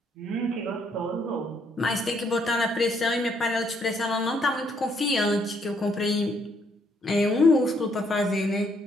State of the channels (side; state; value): both; normal; correlation 0.71